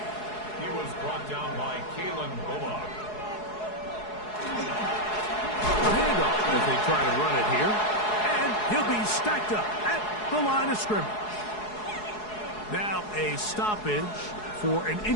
He was brought down by Kalen Bullock. A handoff as they try to run it here. And he'll be stacked up at the line of scrimmage. Now a stoppage for an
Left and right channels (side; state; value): right; late; 4.7 ms